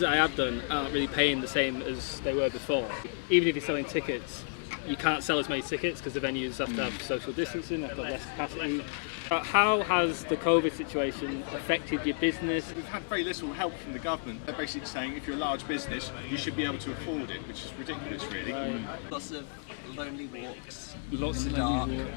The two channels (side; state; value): right; silent; 57 dB below the other